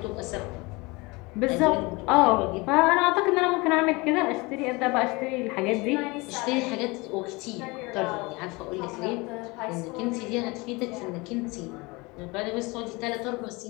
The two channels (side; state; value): right; quieter; 25.1 dB